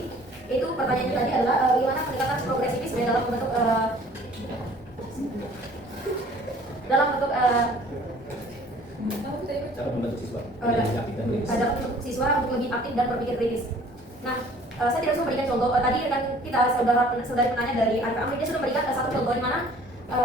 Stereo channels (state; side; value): normal; both; correlation 0.53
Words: Itu pertanyaannya tadi adalah bagaimana pendekatan progresivisme dalam bentuk Cara membentuk siswa menjadi aktif dan kritis. dapat bentuk siswa untuk lebih aktif dan berpikir kritis. Nah, saya tidak bisa memberikan contoh. Tadi rekan kita saudari penanya dari Arka Amri, dia sudah memberikan satu contoh di mana